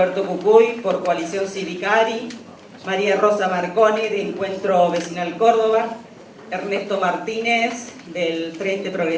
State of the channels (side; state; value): both; identical; correlation 1.00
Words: Pucuy, por Coalición Cívica ARI, María Rosa Marconi, de Encuentro Vecinal Córdoba, Ernesto Martínez, del Frente